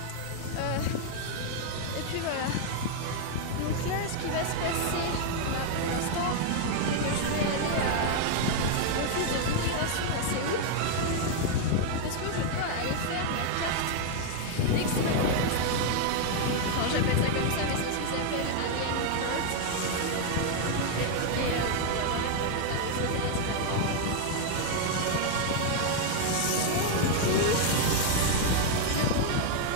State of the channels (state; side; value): different; both; correlation 0.00